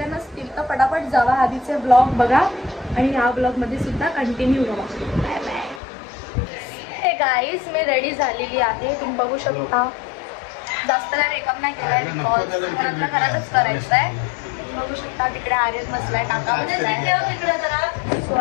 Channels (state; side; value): drops out; right; at 5.8 s